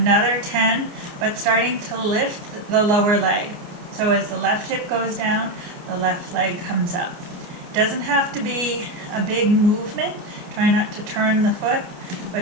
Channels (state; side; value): late; left; 29 ms